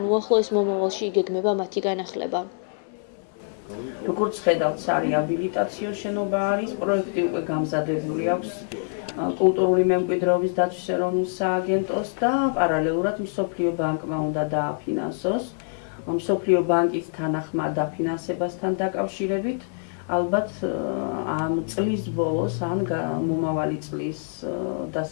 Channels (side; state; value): right; silent; 62 dB below the other